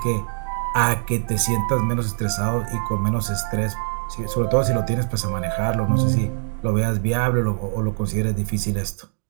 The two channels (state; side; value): silent; left; digital silence